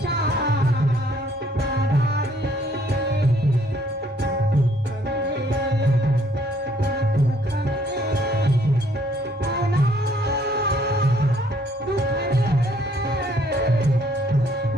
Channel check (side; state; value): both; normal; correlation 0.64